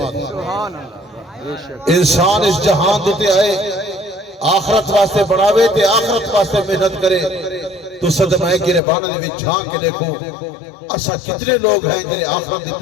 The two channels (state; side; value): drops out; right; at 8.8 s